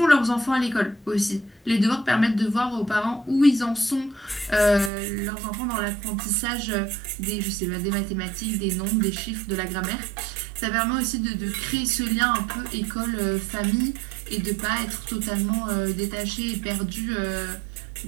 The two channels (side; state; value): left; drops out; at 4.9 s